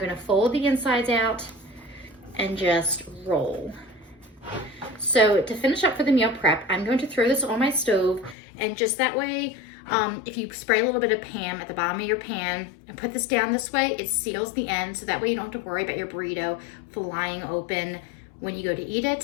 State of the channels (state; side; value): drops out; right; at 8.3 s